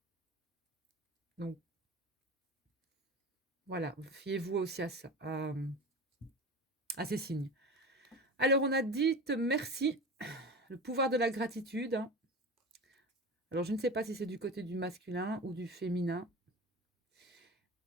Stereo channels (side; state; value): both; normal; correlation 0.30